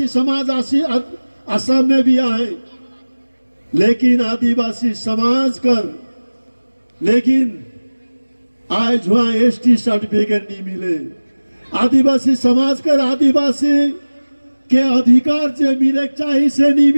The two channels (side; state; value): both; inverted; correlation -1.00